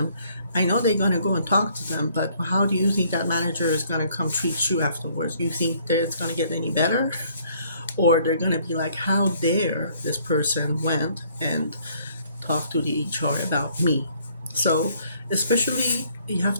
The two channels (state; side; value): inverted; both; correlation -0.62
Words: I know they're going to go and talk to them, but how do you think that manager is going to come treat you afterwards? Do you think that it's going to get any better? Or they're going to be like, how dare this person went and talk to the HR about me? So, especially, you